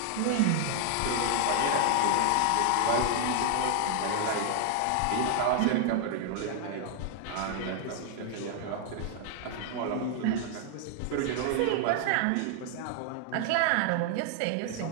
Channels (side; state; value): both; different; correlation 0.00